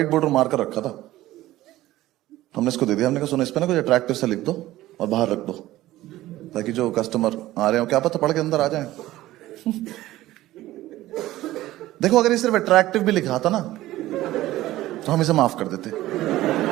बोर्ड मार कर रखा था, हमने इसको दे दिया। हमने कहा सुनो, इस पे ना कुछ अट्रैक्टिव सा लिख दो और बाहर रख दो, ताकि जो कस्टमर आ रहे हो क्या पता पढ़ के अंदर आ जाए। देखो अगर ये सिर्फ अट्रैक्टिव भी लिखा था ना तो हम इसे माफ कर देते,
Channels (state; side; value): quieter; left; 15.9 dB